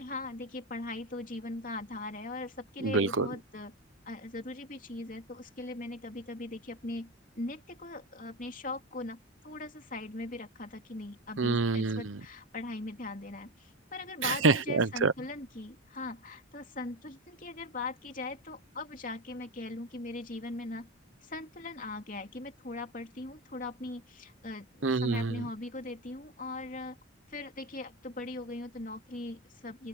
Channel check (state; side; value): normal; both; correlation 0.17